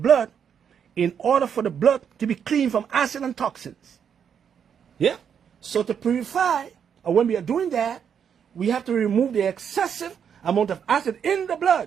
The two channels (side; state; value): left; quieter; 7.7 dB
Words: in order for the blood to be clean from acid and toxins. Yeah? So to purify, or when we are doing that, we have to remove the excessive amount of acid in the